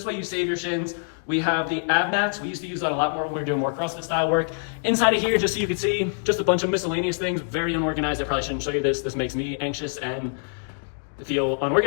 way you save your shins. We have the ab mats. We used to use that a lot more when we were doing more CrossFit style work. Inside of here, just so you can see, just a bunch of miscellaneous things. Very unorganized. I probably shouldn't show you this. This makes me anxious and feel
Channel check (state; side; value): silent; right; 62 dB below the other